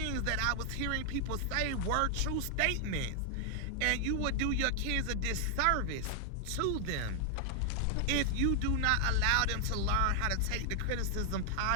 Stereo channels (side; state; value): both; different; correlation 0.00